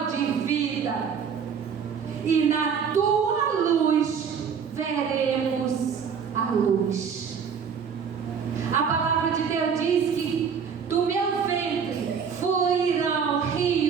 de vida, e na tua luz veremos a luz. A palavra de Deus diz que do meu ventre fluirão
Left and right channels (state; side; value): quieter; left; 6.8 dB